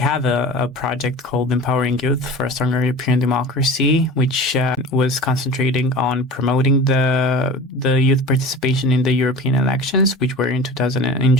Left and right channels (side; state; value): both; normal; correlation 0.36